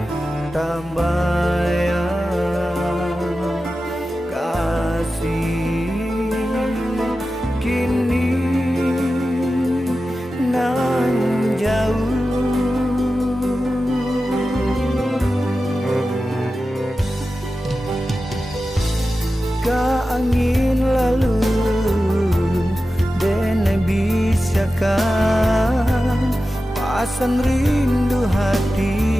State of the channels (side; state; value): both; normal; correlation 0.93